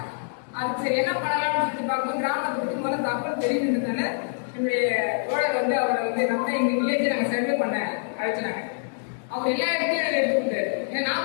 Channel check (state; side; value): silent; right; digital silence